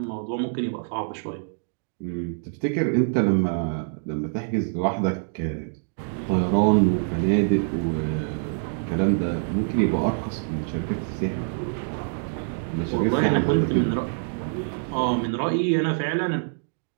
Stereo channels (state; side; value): silent; left; digital silence